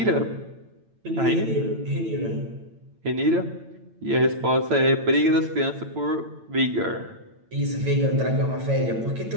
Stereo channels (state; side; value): late; left; 8.9 ms